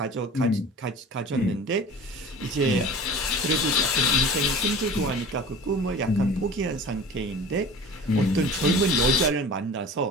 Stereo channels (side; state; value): both; normal; correlation 0.39